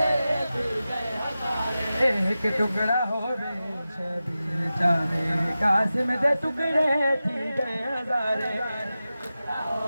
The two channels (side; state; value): both; inverted; correlation -0.94